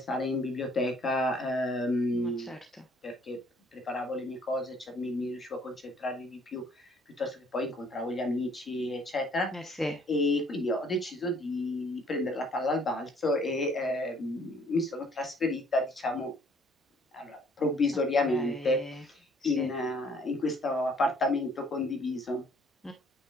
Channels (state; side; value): normal; both; correlation 0.61